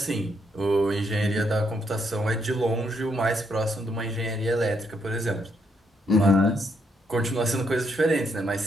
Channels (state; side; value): normal; both; correlation 0.75